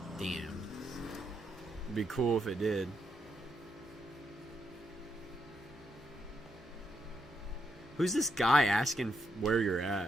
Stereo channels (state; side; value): normal; both; correlation 0.80